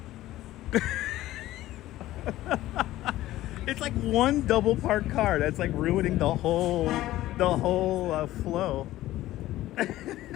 It's like one double parked car that's like ruining the whole flow.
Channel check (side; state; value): right; quieter; 15.4 dB